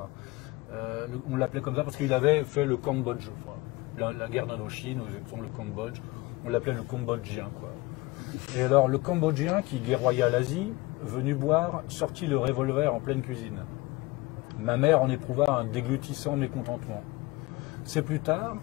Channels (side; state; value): right; quieter; 22.0 dB